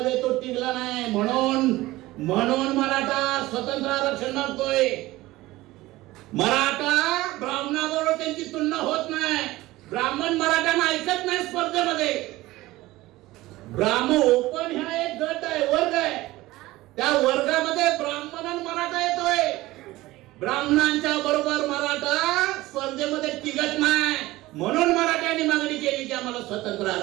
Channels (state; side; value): quieter; left; 18.2 dB